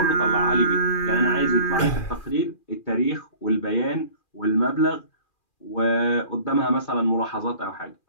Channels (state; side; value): late; right; 2.4 ms